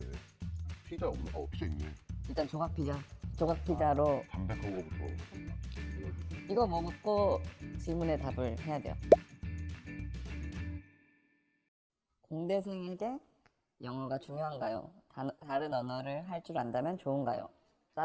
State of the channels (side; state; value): both; identical; correlation 1.00